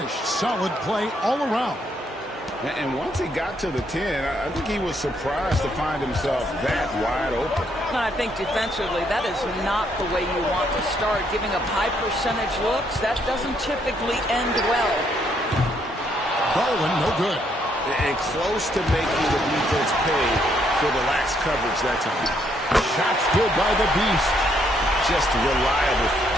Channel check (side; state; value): both; normal; correlation 0.72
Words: Solid play all around. And once he got to the 10, I think he was surprised to find himself that wide open. I think defensively, that is not the way you want to start. Giving up high percentage looks, that doesn't typically end well. Garland, no good. And close to making the defense pay for the lax coverage that time. Shots good by the Beast. Just reliable,